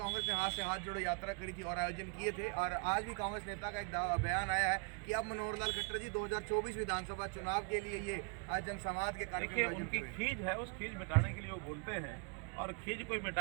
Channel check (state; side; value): quieter; left; 34.7 dB